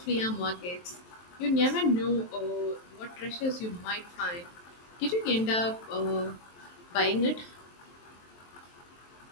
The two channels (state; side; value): late; right; 23 ms